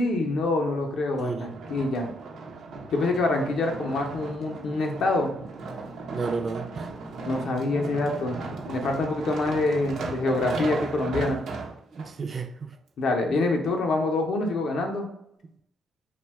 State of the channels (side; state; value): both; normal; correlation 0.73